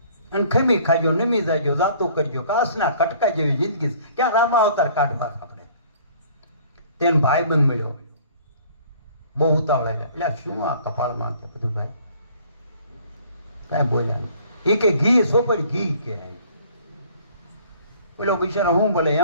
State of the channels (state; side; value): inverted; both; correlation -0.54